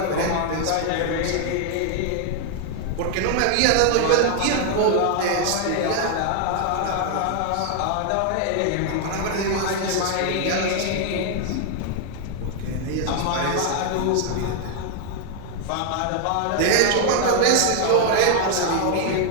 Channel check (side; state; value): both; different; correlation 0.00